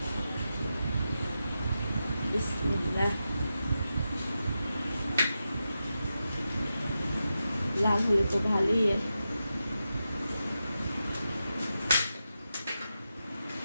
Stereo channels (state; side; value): inverted; both; correlation -0.89